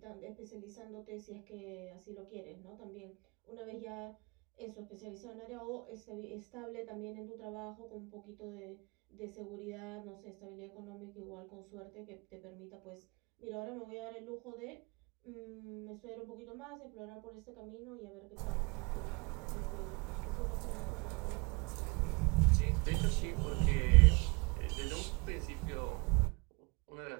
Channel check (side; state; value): left; quieter; 29.4 dB